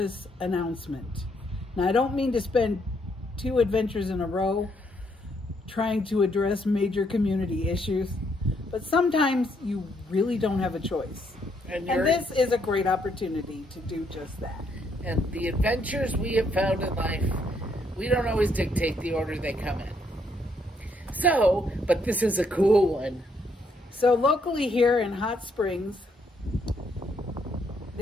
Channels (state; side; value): normal; both; correlation 0.72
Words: announcement. Now I don't mean to spend two adventures in a row trying to address major community issues, but sometimes you really don't have a choice. And this is a great opportunity to do just that. And the adventures we have found in life, we don't always dictate the order they come in. So, but this is a cool one. So locally here in Hot Springs,